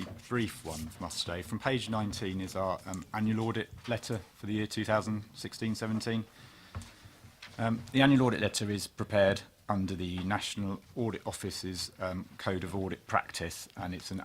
brief one from us today. From page 19 is our annual audit letter for the year 2016-17. The annual audit letter is prepared under the National Audit Office's Code of Audit Practice, and it's an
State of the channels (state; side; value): identical; both; correlation 1.00